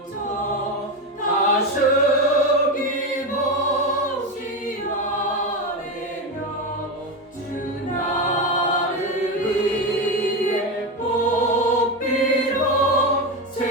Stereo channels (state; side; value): normal; both; correlation 0.16